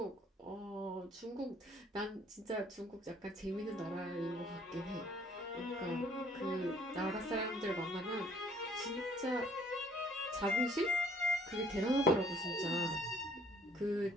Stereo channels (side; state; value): both; normal; correlation 0.60